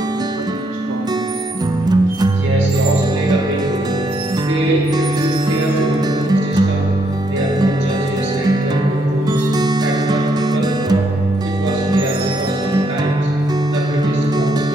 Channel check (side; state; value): both; normal; correlation 0.74